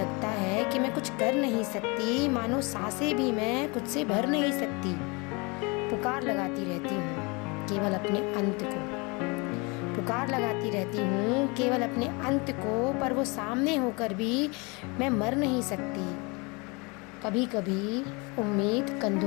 है कि मैं कुछ कर नहीं सकती, मानो सांसें भी मैं खुद से भर नहीं सकती। पुकार लगाती रहती हूँ केवल अपने अंत को, पुकार लगाती रहती हूँ केवल अपने अंत को, पर वो सामने होकर भी मैं मर नहीं सकती। कभी कभी उम्मीद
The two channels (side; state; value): right; quieter; 28.5 dB